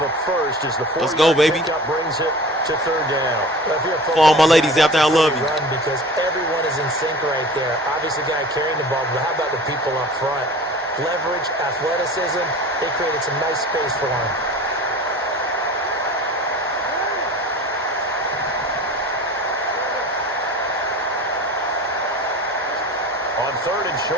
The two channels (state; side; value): normal; both; correlation 0.39